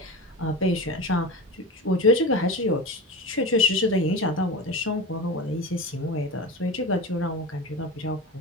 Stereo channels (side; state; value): both; normal; correlation 0.27